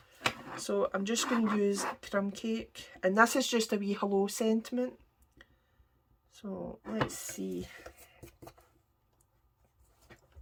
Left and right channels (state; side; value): identical; both; correlation 1.00